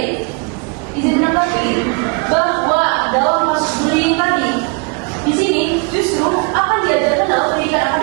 izin menanggapi bahwa dalam kasus bullying tadi, di sini justru akan diajarkan dalam pendidikan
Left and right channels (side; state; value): left; quieter; 31.7 dB